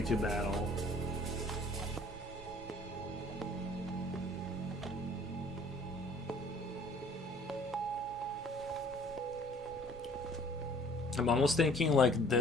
battle. I'm almost thinking like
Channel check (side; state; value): both; normal; correlation 0.55